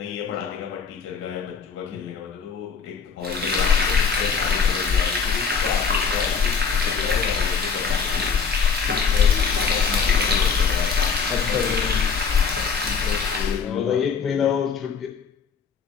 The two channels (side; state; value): right; quieter; 5.8 dB